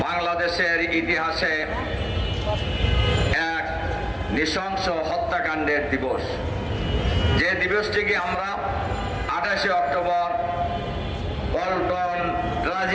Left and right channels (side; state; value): both; identical; correlation 1.00